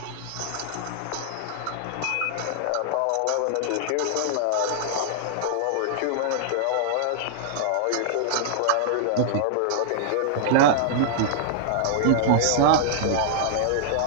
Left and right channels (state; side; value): different; both; correlation -0.01